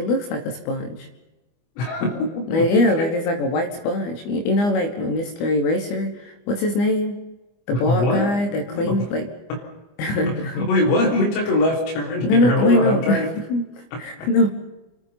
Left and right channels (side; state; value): right; late; 25 ms